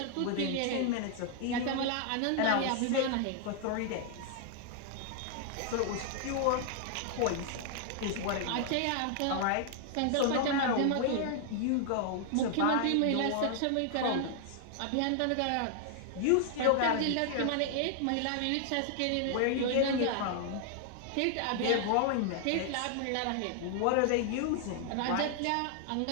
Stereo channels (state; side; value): different; both; correlation 0.00